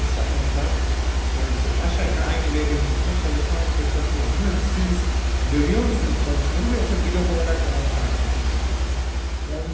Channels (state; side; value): identical; both; correlation 1.00